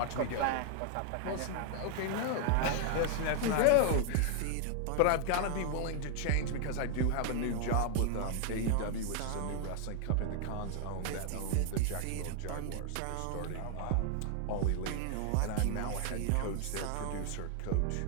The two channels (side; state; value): both; different; correlation 0.00